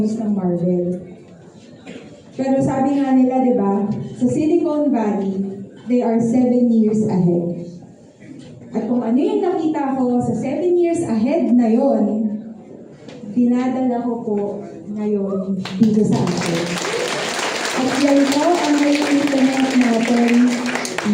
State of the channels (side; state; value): both; identical; correlation 1.00